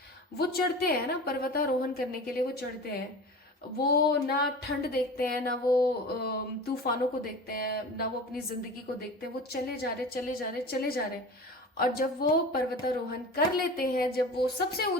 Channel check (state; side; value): normal; both; correlation 0.35